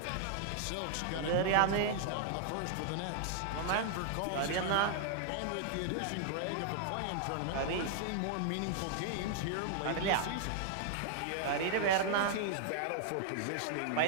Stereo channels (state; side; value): different; both; correlation -0.01